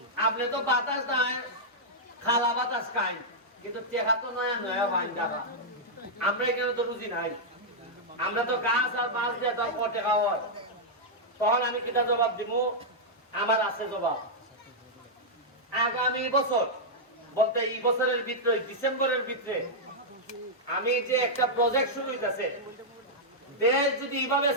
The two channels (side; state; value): both; normal; correlation -0.07